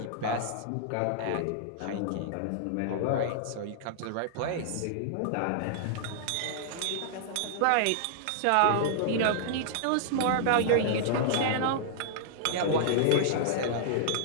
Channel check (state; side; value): different; both; correlation -0.01